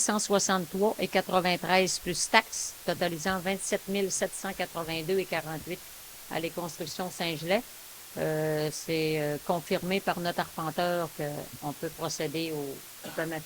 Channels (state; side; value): identical; both; correlation 1.00